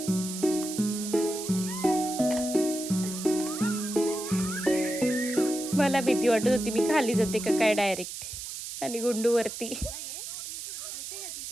मला भीती वाटत होती मी खाली जाते का काय डायरेक्ट. आणि गुंडू वरती.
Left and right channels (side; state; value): right; noise; hiss, 8 dB below the sound